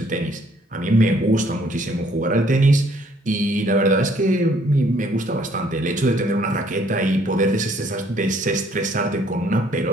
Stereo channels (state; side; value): normal; both; correlation 0.63